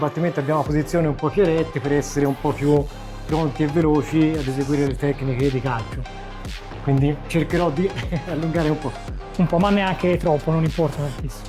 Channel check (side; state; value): both; identical; correlation 1.00